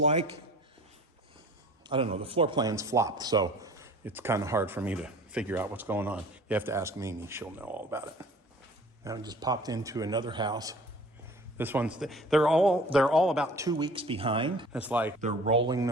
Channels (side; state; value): both; normal; correlation 0.47